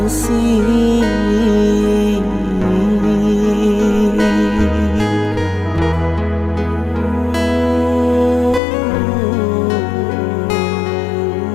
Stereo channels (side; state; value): right; drops out; at 8.6 s